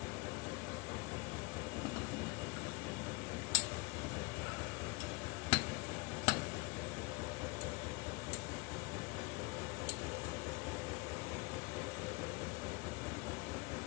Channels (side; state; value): right; quieter; 25.3 dB